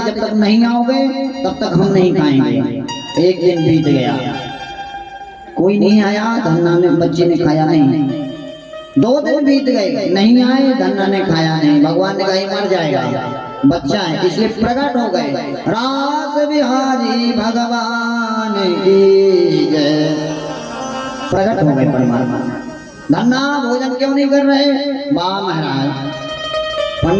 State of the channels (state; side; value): identical; both; correlation 1.00